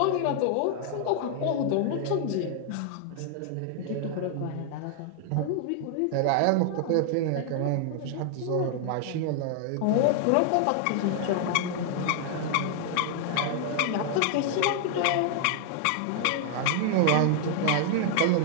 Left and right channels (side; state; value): both; different; correlation 0.00